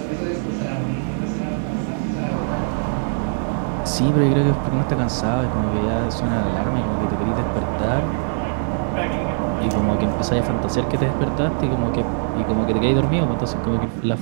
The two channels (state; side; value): silent; left; digital silence